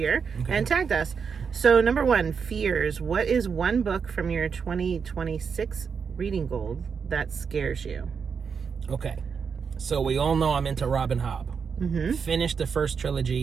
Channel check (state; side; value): quieter; left; 6.1 dB